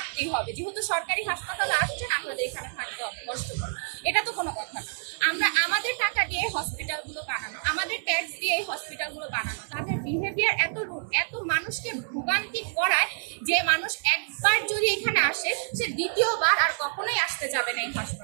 হবে, যেহেতু সরকারি হাসপাতালে আসছেন আপনাদের এখানে থাকতে হবে কষ্ট করে। এটা তো কোনো কথা না, আমরা আমাদের টাকা দিয়ে হসপিটালগুলো বানানো, আমাদের ট্যাক্স দিয়ে এই হসপিটালগুলো বানানো। তাদের বিহেভিয়ার এত মানুষকে ভোগান্তি করায় যে মানুষ একবার যদি এখানে আসে সে দ্বিতীয়বার আর কখনোই আসতে যাবে না এই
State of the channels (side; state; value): left; silent; 56 dB below the other